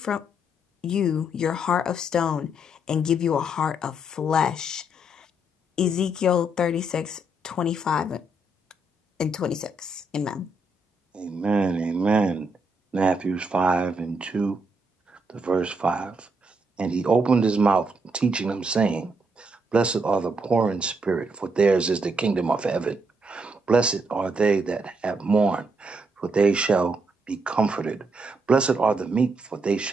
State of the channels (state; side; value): normal; both; correlation 0.77